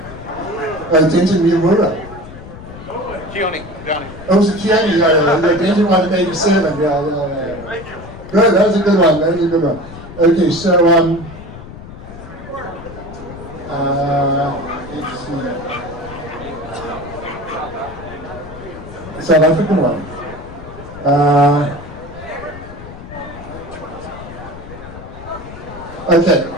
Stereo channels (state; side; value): noise; left; rumble, 14 dB below the sound